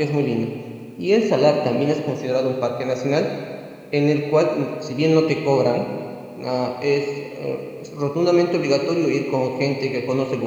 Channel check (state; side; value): identical; both; correlation 1.00